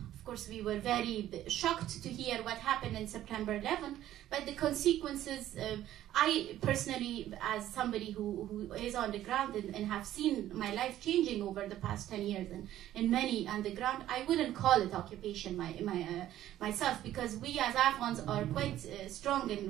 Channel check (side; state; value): left; quieter; 13.0 dB